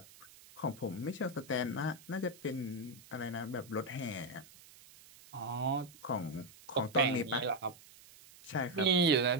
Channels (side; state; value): right; noise; hiss, 22 dB below the sound